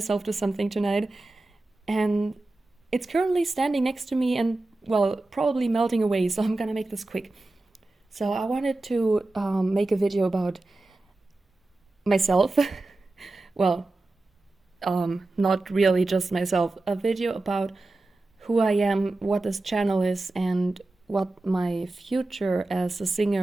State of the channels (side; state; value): left; quieter; 3.0 dB